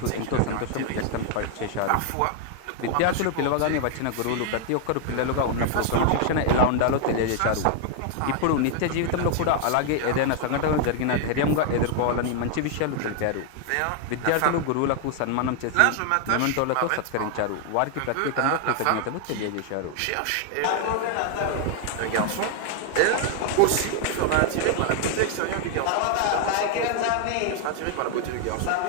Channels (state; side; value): different; both; correlation 0.00